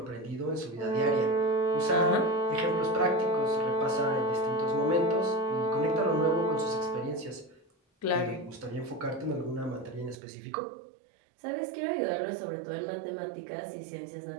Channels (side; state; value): left; drops out; at 10.2 s